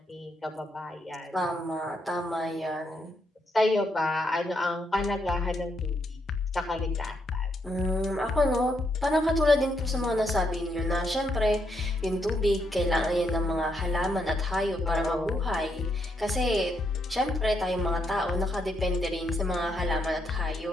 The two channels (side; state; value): both; normal; correlation 0.78